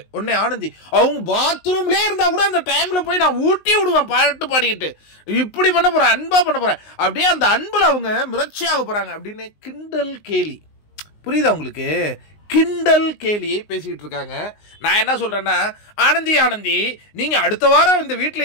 உடனே ஆனந்தி அவங்க பாத்ரூம்லேயே இருந்தா கூட அந்த டைம்ல போய் நான் ஊட்டி விடுவேன் பாட்டு பாடிக்கிட்டு. இப்படி பண்ண போறேன், அன்பா பண்ண போறேன், அப்படியே அந்த அன்புல அவங்க மிரட்சியாக போறாங்க அப்படின்னு கிண்டல் கேலி. புரியுதா உங்களுக்கு? கிண்டல் கேலியை பேசிக்கிட்டு இருக்காங்க. நான் என்ன சொல்றேன்னா, ஆனந்தி நீங்க அடுத்த வாரம் இந்த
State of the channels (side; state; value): right; late; 19 ms